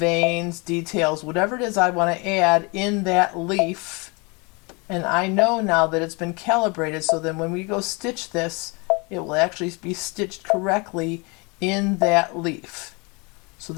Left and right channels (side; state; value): right; quieter; 29.1 dB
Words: details, whatever it is I want to add in that leaf And I know now that it's been calibrated, so then when we go stitch this, it will actually be stitched correctly in that leaf. So